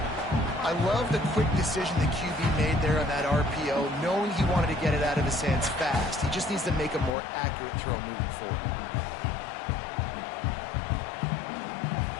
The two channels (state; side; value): drops out; right; at 7.1 s